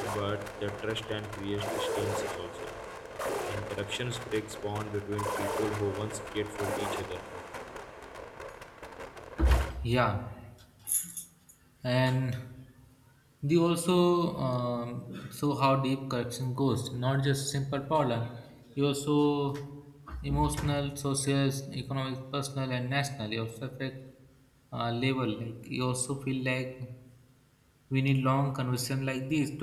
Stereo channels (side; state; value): both; identical; correlation 1.00